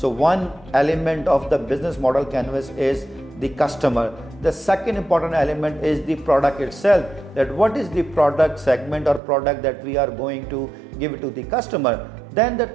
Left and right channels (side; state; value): left; drops out; at 9.2 s